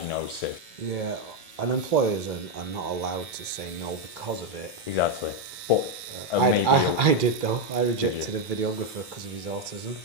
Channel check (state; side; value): normal; both; correlation 0.04